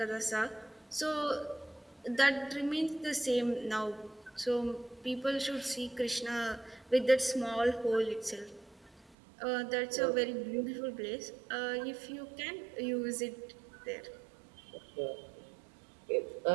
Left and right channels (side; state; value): left; drops out; at 9.2 s